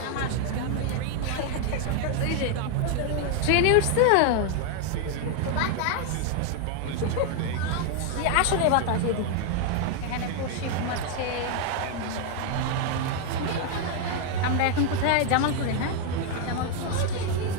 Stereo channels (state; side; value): different; both; correlation 0.00